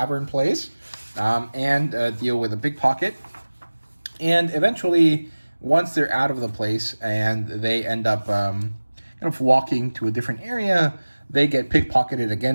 place, and deal with a pickpocket. And eventually, once they're out of the place and they end up kind of walking to a different area, they get pickpocketed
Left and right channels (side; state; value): both; inverted; correlation -1.00